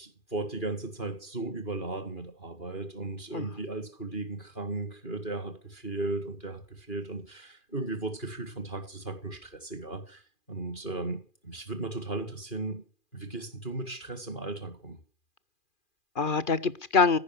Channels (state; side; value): late; right; 2.4 ms